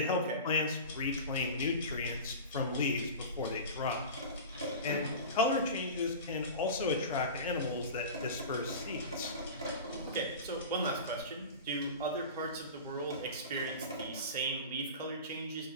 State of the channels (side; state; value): both; inverted; correlation -0.31